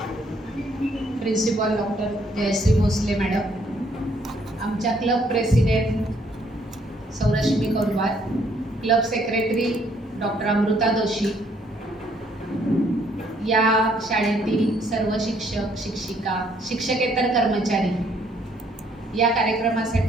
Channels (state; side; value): normal; both; correlation 0.67